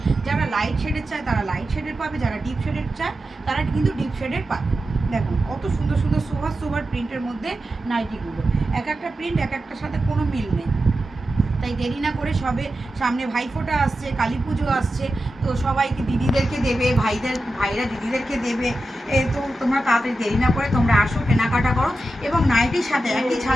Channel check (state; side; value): normal; both; correlation 0.91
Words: যারা লাইট শেডের চায় তারা লাইট শেডের পাবে, যারা ডিপ শেডের চায় তারা কিন্তু ডিপ শেডের পাবে। দেখুন কত সুন্দর সুন্দর সোভার প্রিন্টের মধ্যে নাইটিগুলো, এক একটা প্রিন্ট এক একটার সাথে কোনো মিল নেই। তাই দেরি না করে সবে সামনে ভাইফোঁটা আসছে, কালী পুজো আসছে, তো সবাইকে দিদিদেরকে দেবে, ভাইরা দিদিদেরকে দেবে, তো তোমরা তাড়াতাড়ি দেরি না করে তোমরা আসো, কেনাকাটা করো। এবং নাইটির সাথে একই